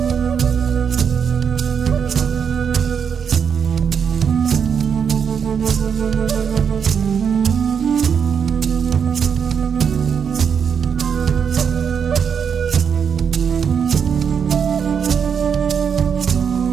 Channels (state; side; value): quieter; left; 7.1 dB